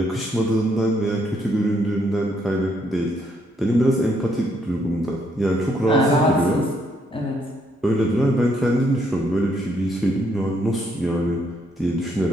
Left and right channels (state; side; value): normal; both; correlation 0.72